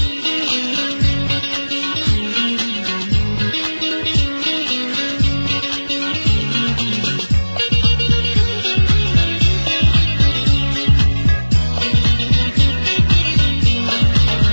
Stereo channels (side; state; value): both; inverted; correlation -1.00